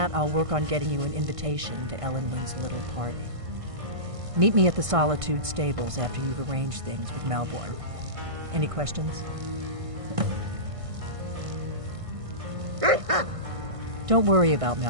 I'll work on getting you an invitation to Elenwen's little party. Meet me at the Solitude stables after you've arranged things with Malborn. Any questions? Don't worry about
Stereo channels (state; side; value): late; left; 1.6 ms